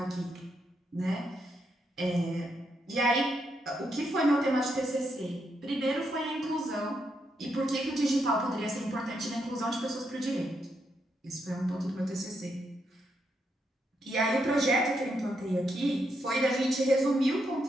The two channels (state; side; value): normal; both; correlation 0.80